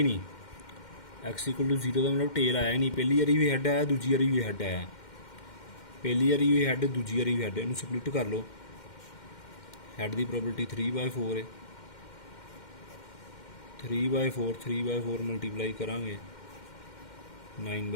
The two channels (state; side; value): late; right; 2.1 ms